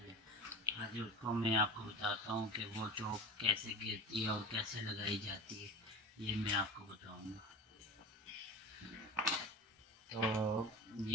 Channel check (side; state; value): both; normal; correlation 0.32